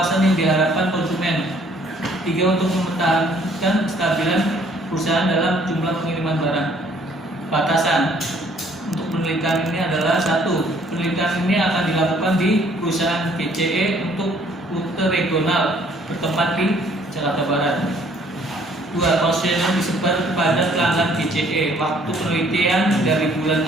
yang diharapkan konsumen. 3. Untuk mempertahankan kestabilan perusahaan dalam jumlah pengiriman barang. Batasan untuk penelitian ini adalah 1. Penelitian ini akan dilakukan di perusahaan GCE untuk rute regional bertempat di Jakarta Barat. 2. Kuesioner disebar kepada pelanggan GCE. Waktu penelitian dari bulan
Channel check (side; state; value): both; normal; correlation 0.61